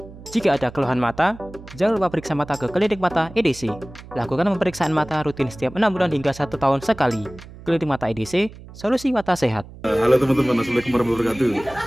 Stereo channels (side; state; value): right; noise; hum, 17 dB below the sound